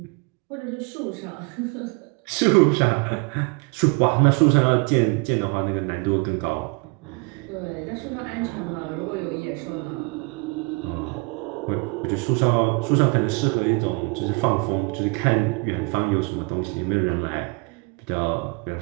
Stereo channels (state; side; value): quieter; left; 31.0 dB